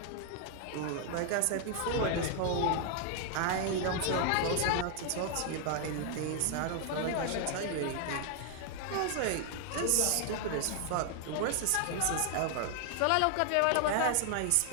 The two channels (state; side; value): different; both; correlation 0.00